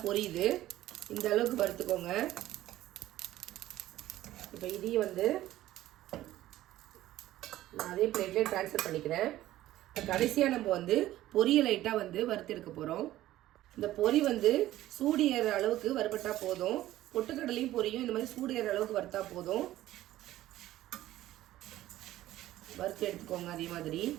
பொரியுது. இந்த அளவுக்கு வறுத்துக்கோங்க. இப்போ இதையும் வந்து நான் அதே பிளேட்லேயே ட்ரான்ஸ்ஃபர் பண்ணிக்கிறேன். இப்போ கடைசியாக நம்ம வந்து பொரியை லைட்டாக வந்து வறுத்து எடுக்க போகிறோம். இந்த பொரி வந்து சூடு ஏற அளவுக்கு வறுபட்டா போதும். பொட்டுக்கடலையும் பொரியும் இந்த மாதிரி சூடு ஏற அளவுக்கு வறுத்தா போதும். வறுத்து எடுத்துக்கோங்க. அதே மாதிரி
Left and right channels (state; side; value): quieter; left; 14.7 dB